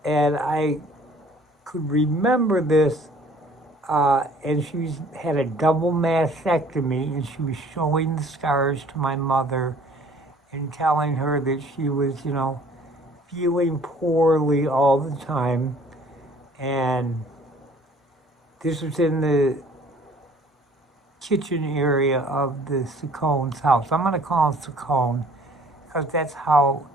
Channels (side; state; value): both; normal; correlation 0.54